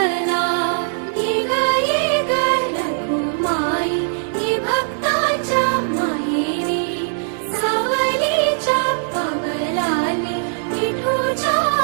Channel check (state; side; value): silent; left; 57 dB below the other